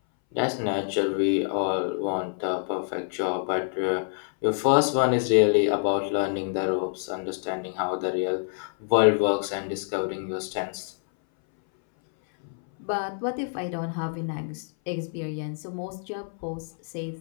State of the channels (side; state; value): right; silent; 59 dB below the other